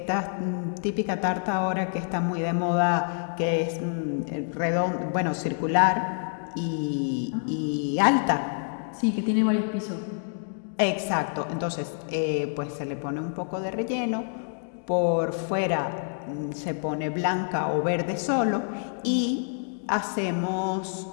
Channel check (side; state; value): right; silent; digital silence